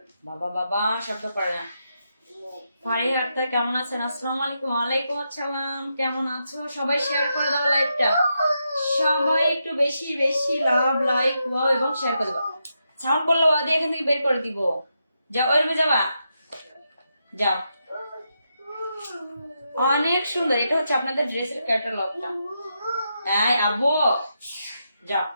বাবা বাবা, শব্দ করে না। ফারিহা আক্তার কেমন আছেন? আসসালামু আলাইকুম। ওয়ালাইকুম আসসালাম, কেমন আছো? সবাই শেয়ার করে দাও লাইভটা, সবাই একটু বেশি বেশি লাভ লাইক ওয়াও এবং শেয়ার করে দাও। সাউন্ড করলে ওয়া দিয়ে এখান থেকে বের করে দিব। যাও, ওই রুমে যাবা, যাও। অনেক সুন্দর, এটা হচ্ছে আপনাদের ড্রেসের ক্যাটালগটা। এই আব্বু, যাও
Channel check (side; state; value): both; inverted; correlation -0.84